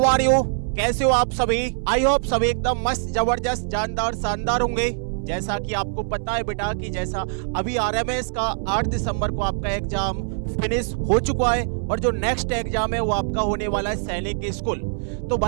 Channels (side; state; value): left; silent; 60 dB below the other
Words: are you? कैसे हो आप सभी? आई होप सभी एकदम मस्त, जबरदस्त, जानदार, शानदार होंगे। जैसा कि आपको पता है बेटा कि जैसा अभी आरएमएस का 8 दिसंबर को आपका एग्जाम फिनिश हो चुका है और जो नेक्स्ट एग्जाम है वो आपका होने वाला है सैनिक स्कूल। तो